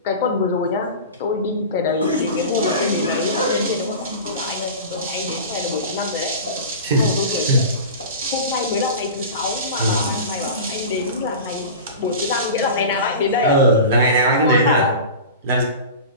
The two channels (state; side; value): inverted; both; correlation -0.32